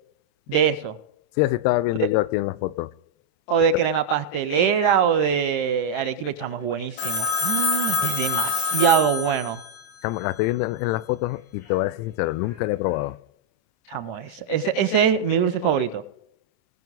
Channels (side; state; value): right; late; 27 ms